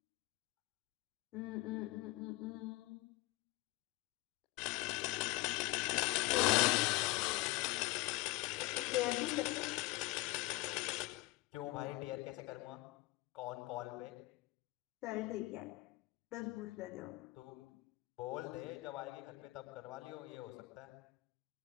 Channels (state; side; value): quieter; right; 20.7 dB